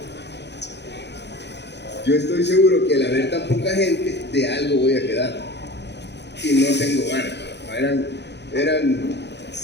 yo estoy seguro que al haber tan poca gente, de algo voy a quedar. Y no tengo ganas. Eran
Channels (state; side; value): late; right; 0.50 ms